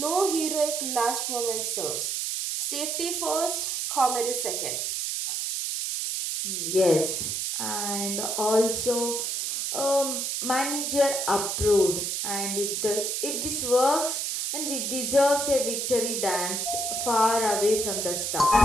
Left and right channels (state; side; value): noise; right; hiss, 1 dB below the sound